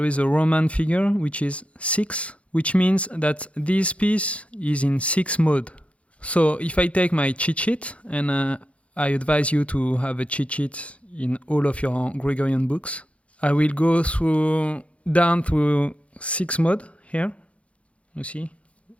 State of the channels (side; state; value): right; late; 0.063 ms